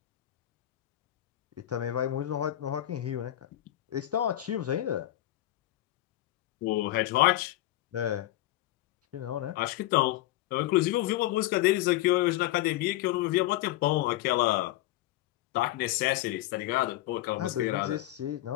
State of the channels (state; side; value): quieter; right; 15.2 dB